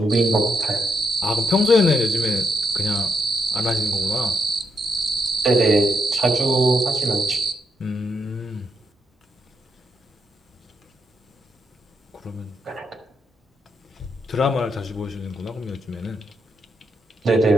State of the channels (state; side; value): normal; both; correlation 0.81